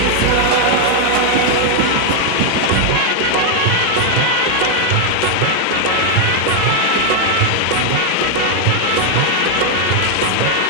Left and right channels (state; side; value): different; both; correlation 0.00